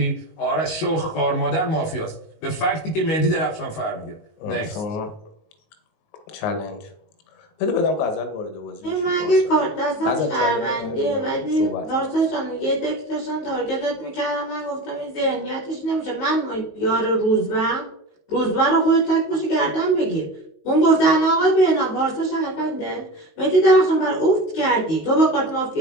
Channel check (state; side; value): late; right; 19 ms